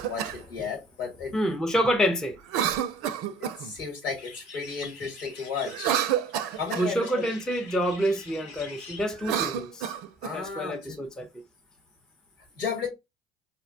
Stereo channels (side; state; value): both; normal; correlation 0.51